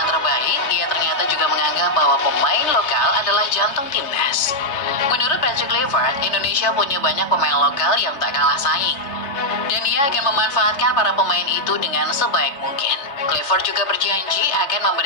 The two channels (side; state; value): right; late; 3.2 ms